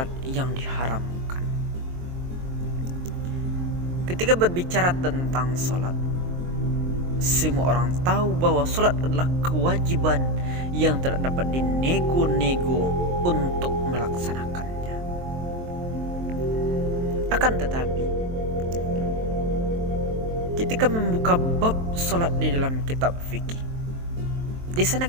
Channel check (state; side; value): late; left; 23 ms